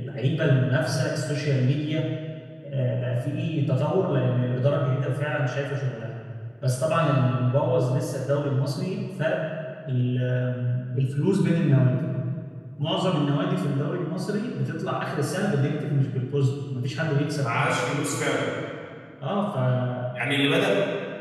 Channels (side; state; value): both; identical; correlation 1.00